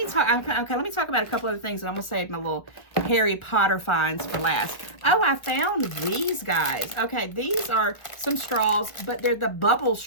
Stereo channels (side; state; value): right; late; 1.7 ms